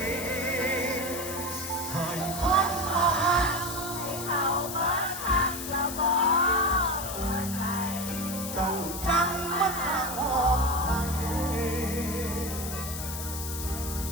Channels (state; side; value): noise; left; hiss, 7 dB below the sound